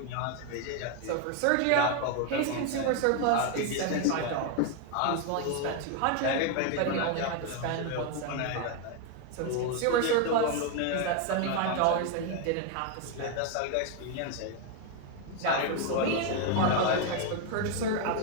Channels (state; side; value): different; both; correlation 0.01